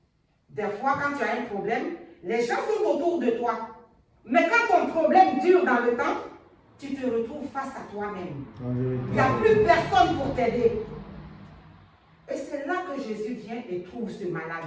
Des fois, quand tu as un problème, les gens sont autour de toi. Mais quand ton problème dure dans le temps, tu te retrouves face à toi-même. Il n'y a plus personne pour t'aider. Et c'est là que Jésus vient et trouve ce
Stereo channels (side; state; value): both; identical; correlation 1.00